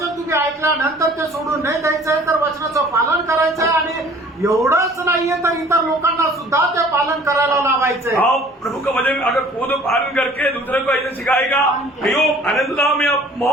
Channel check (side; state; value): both; normal; correlation 0.51